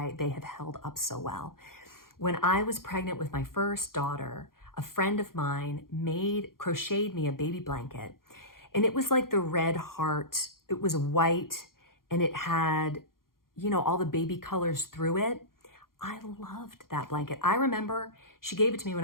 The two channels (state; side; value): late; right; 0.92 ms